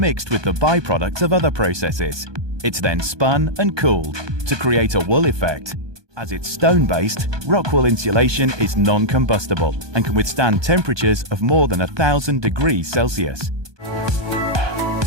with the byproducts of other processes. It's then spun and cooled to create a wool effect. As it's stone-based, RockWool insulation is non-combustible and can withstand temperatures of more than 1,000 degrees Celsius.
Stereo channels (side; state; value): left; late; 1.2 ms